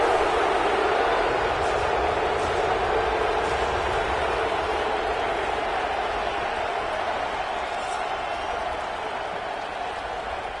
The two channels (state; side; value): identical; both; correlation 1.00